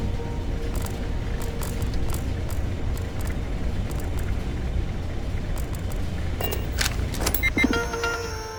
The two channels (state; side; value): identical; both; correlation 1.00